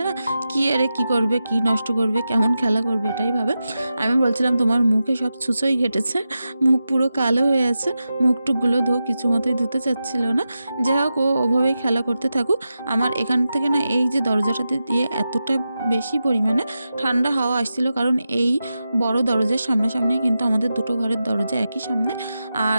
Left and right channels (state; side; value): inverted; both; correlation -0.91